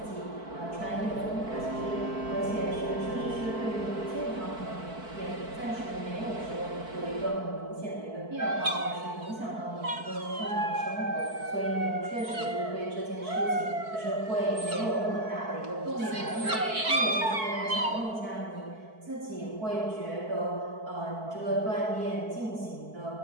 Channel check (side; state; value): left; late; 4.6 ms